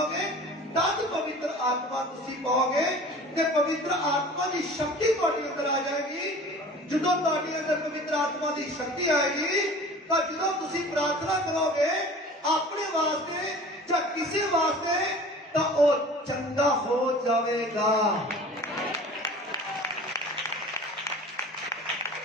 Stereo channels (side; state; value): both; normal; correlation 0.42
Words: ਤਦ ਪਵਿੱਤਰ ਆਤਮਾ ਤੁਸੀਂ ਪਾਓਗੇ ਤੇ ਪਵਿੱਤਰ ਆਤਮਾ ਦੀ ਸ਼ਕਤੀ ਤੁਹਾਡੇ ਅੰਦਰ ਆ ਜਾਏਗੀ। ਜਦੋਂ ਤੁਹਾਡੇ ਅੰਦਰ ਪਵਿੱਤਰ ਆਤਮਾ ਦੀ ਸ਼ਕਤੀ ਆਏਗੀ ਤਾਂ ਜਦੋਂ ਤੁਸੀਂ ਪ੍ਰਾਰਥਨਾ ਕਰੋਗੇ ਆਪਣੇ ਵਾਸਤੇ ਜਾਂ ਕਿਸੇ ਵਾਸਤੇ ਤਾਂ ਉਹ ਚੰਗਾ ਹੋ ਜਾਵੇਗਾ।